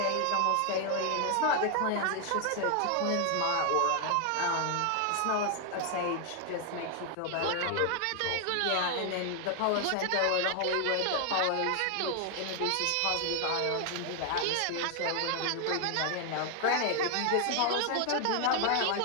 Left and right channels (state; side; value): different; both; correlation 0.00